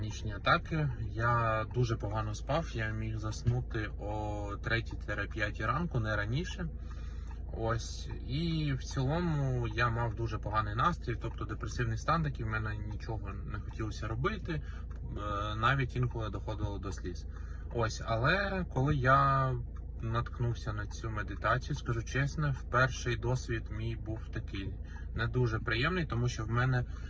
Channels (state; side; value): identical; both; correlation 1.00